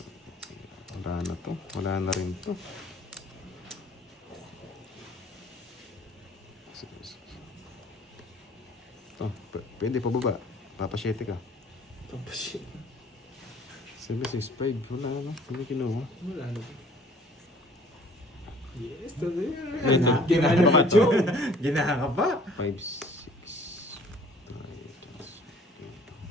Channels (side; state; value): both; normal; correlation 0.53